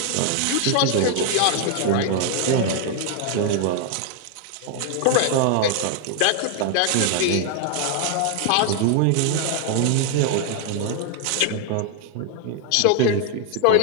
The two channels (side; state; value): both; different; correlation 0.00